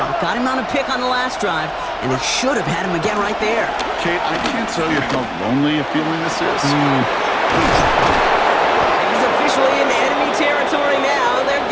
Got him on a pick on the last drive, and they should have had him again right there. Kate, I can't tell you how lonely a feeling this is. He's officially in enemy territory now. They're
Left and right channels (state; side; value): identical; both; correlation 1.00